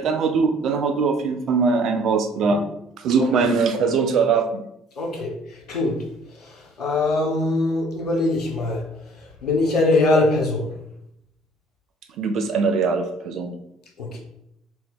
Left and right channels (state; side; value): normal; both; correlation 0.55